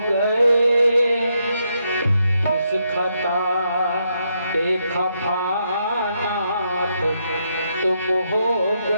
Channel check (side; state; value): both; inverted; correlation -0.79